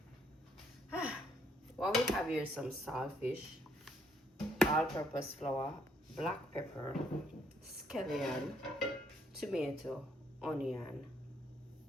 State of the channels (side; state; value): both; normal; correlation 0.70